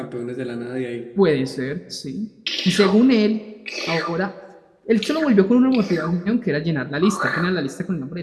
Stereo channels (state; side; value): identical; both; correlation 1.00